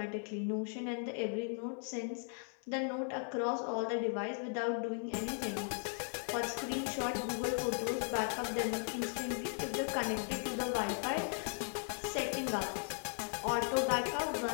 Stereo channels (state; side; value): silent; right; 53 dB below the other